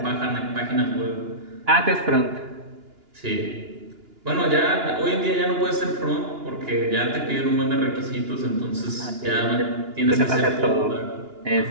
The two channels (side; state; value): left; late; 2.9 ms